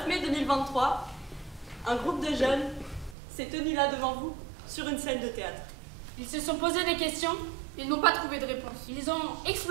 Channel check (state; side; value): drops out; left; at 3.2 s